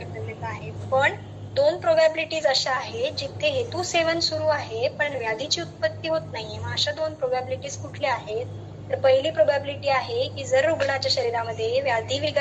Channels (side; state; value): both; identical; correlation 1.00